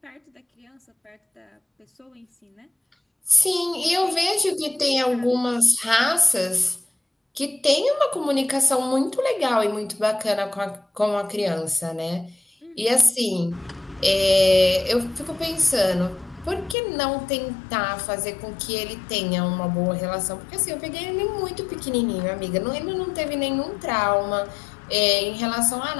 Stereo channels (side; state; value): right; drops out; at 16.8 s